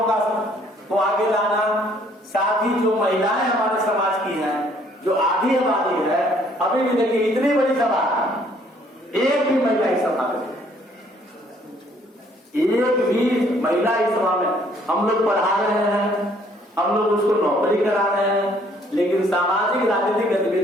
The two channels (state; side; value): normal; both; correlation 0.63